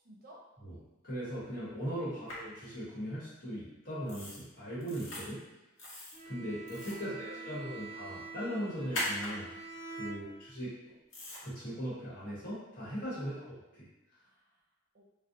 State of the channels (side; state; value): both; normal; correlation 0.53